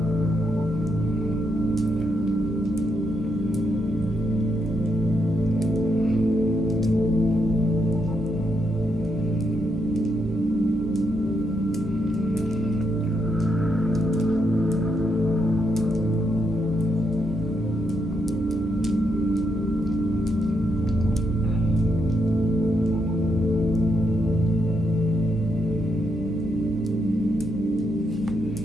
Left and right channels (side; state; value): both; normal; correlation 0.80